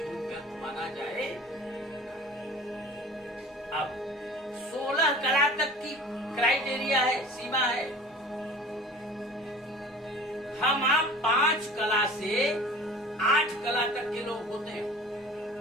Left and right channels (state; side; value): normal; both; correlation 0.43